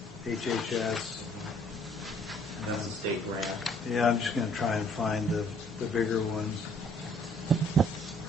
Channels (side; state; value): both; normal; correlation 0.62